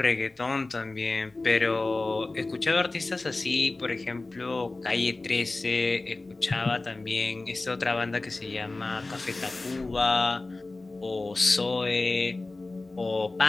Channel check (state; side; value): quieter; right; 3.2 dB